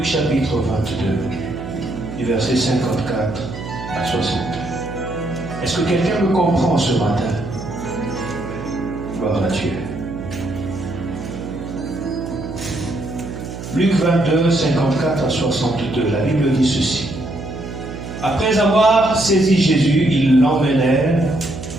chapitre 22, du verset 54 à 62. Est-ce que quelqu'un me comprend ce matin? Gloire à Dieu. Luc 22, 54 à 62, la Bible dit ceci. Après avoir saisi Jésus, ils l'emmenèrent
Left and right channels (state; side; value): noise; right; hum, 9 dB below the sound